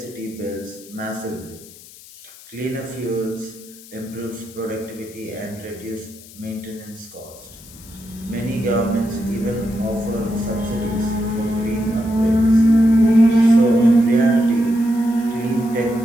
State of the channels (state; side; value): noise; left; hiss, 20 dB below the sound